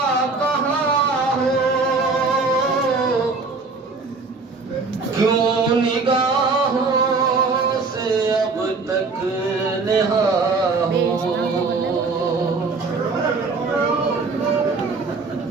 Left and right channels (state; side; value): quieter; left; 4.1 dB